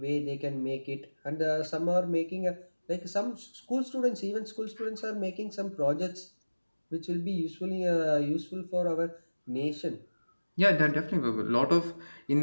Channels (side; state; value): both; inverted; correlation -1.00